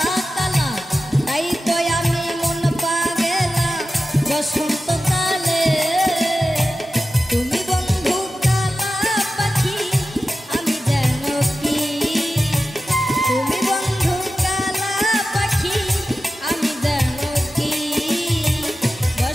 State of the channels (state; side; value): normal; both; correlation 0.94